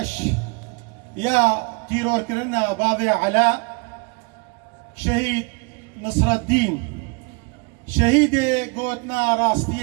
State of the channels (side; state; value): left; quieter; 32.4 dB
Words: يا تيرور كرنا بابي علاء شهيد نصر الدين شهيد قوتنا